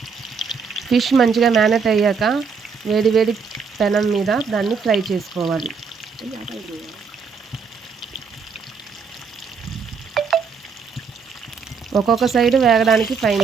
ఫిష్ మంచిగా మ్యారినేట్ అయ్యాక వేడి వేడి పెనం మీద దాన్ని ఫ్రై చేసుకోవాలి. ఒక్కొక్క సైడ్ వేగడానికి 5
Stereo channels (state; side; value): quieter; left; 5.6 dB